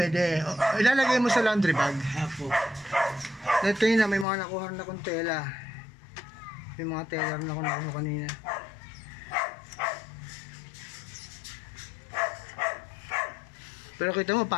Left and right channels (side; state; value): right; drops out; at 4.2 s